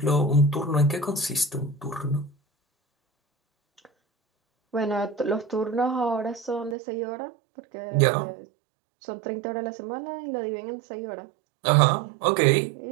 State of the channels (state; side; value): drops out; left; at 6.8 s